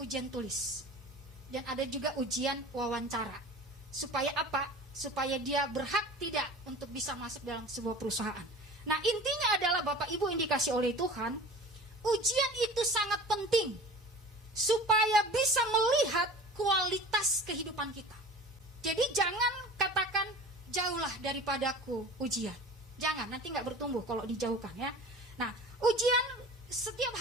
ujian tulis. Dan ada juga ujian wawancara. Supaya apa? Supaya dia berhak tidak untuk bisa masuk dalam sebuah perusahaan. Nah, intinya adalah Bapak Ibu yang dikasih oleh Tuhan, ujian itu sangat penting supaya bisa melihat kualitas kehidupan kita. Jadi jangan katakan jauhlah daripadaku ujian. Jangan, nanti nggak bertumbuh kalau dijauhkan ya. Nah, ujian setiap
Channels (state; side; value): normal; both; correlation 0.39